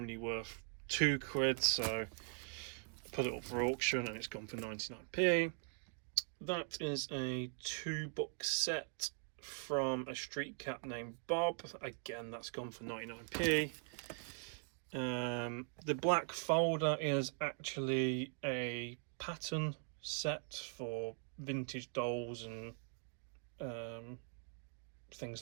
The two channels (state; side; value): silent; left; 50 dB below the other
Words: worth £2, so put it up for auction and it's gone for 99p. That is a 2-book set from a street cat named Bob. Again, that's gone for 99p. The black folder is actually a pattern set for vintage dolls and